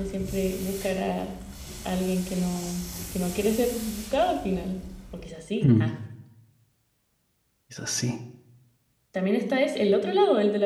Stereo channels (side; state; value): both; identical; correlation 1.00